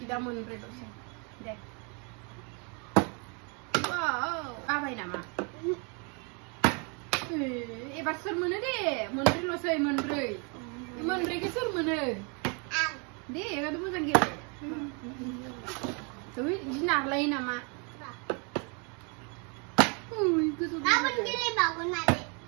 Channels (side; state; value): left; quieter; 35.0 dB